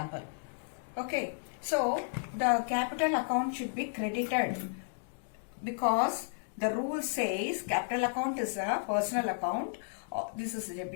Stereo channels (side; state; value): right; silent; digital silence